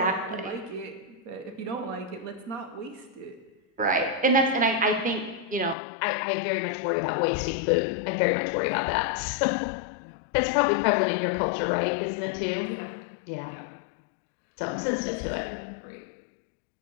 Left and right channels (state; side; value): drops out; right; at 5.8 s